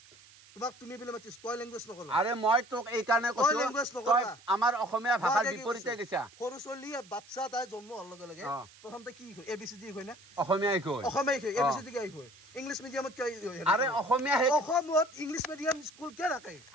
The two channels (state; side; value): noise; right; hiss, 23 dB below the sound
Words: তোমাক তুমি বলে মাতিছ তই ল্যাঙ্গুৱেজ নকৰা আৰে মই তোক এই কাৰণে কৈছো তই আমাৰ অসমীয়া ভাষাৰ বিপৰীতে গৈছা সৰু চলিয়ে বাচ্চা তাই জন্ম হোৱাৰ লগে লগে প্ৰথমতে কি হয় এবিসিডি হয় না অসমীয়াই কয় এবিসিডি কি হয় ইংলিছ মিডিয়ামত কি আৰে অসমীয়া অসমত ইংলিছ মিডিয়াম স্কুল কে ৰাখে